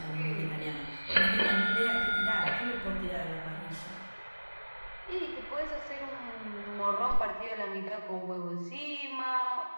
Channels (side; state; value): both; inverted; correlation -1.00